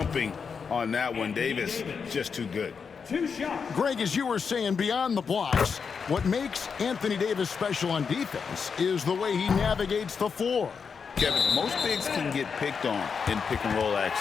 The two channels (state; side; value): quieter; right; 5.9 dB